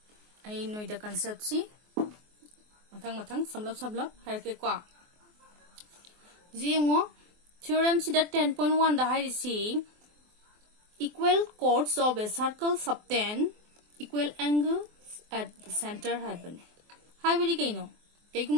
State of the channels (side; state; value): left; late; 24 ms